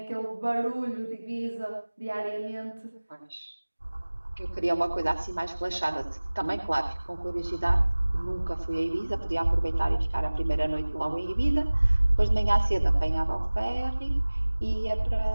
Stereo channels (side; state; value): both; inverted; correlation -1.00